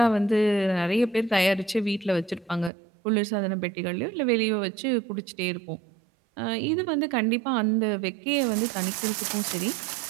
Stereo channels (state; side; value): drops out; left; at 2.7 s